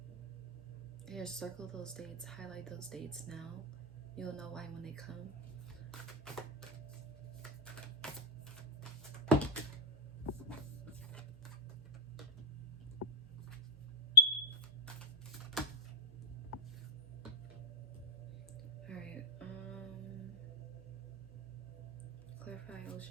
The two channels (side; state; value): both; normal; correlation -0.14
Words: Here, circle those dates, highlight those dates now. You'll know why when they come. All right, clarify